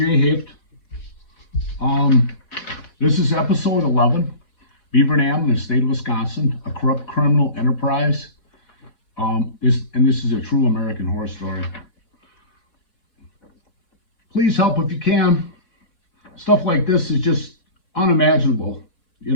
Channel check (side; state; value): right; late; 4.2 ms